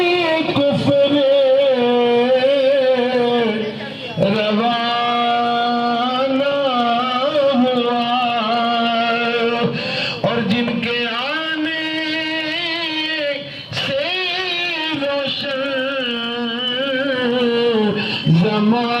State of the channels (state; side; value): identical; both; correlation 1.00